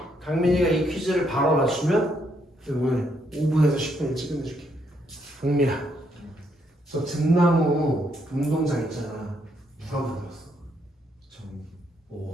강민이가 이 퀴즈를 바로 맞추면 오늘 5분에서 10분 일찍 끝내줄게. 강민아, 저 등나무 운동장 있잖아. 누가 만들었어?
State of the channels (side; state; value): both; normal; correlation 0.74